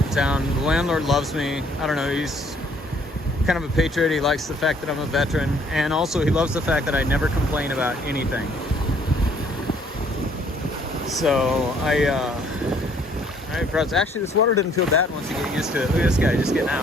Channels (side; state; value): both; normal; correlation 0.62